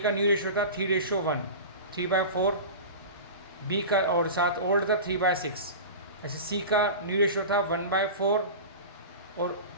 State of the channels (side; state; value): both; inverted; correlation -0.30